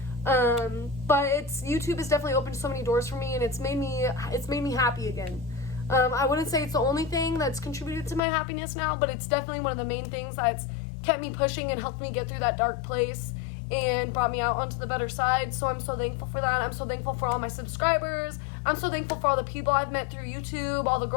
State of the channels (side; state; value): right; drops out; at 8.2 s